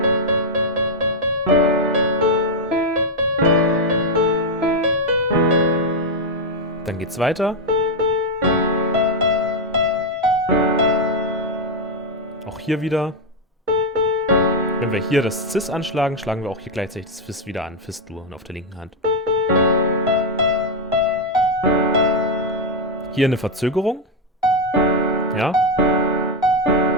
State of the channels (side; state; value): both; normal; correlation 0.02